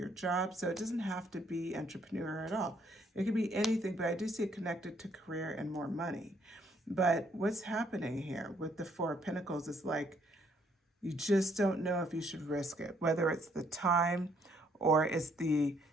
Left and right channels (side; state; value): both; normal; correlation 0.68